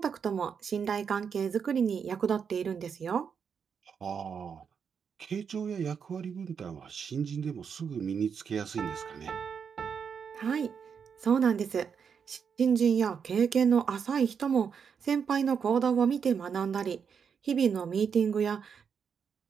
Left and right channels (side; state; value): left; quieter; 6.7 dB